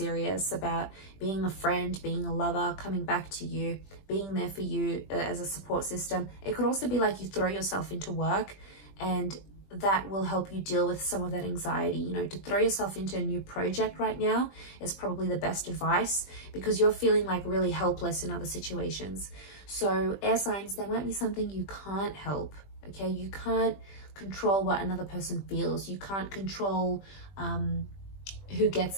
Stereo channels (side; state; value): right; late; 20 ms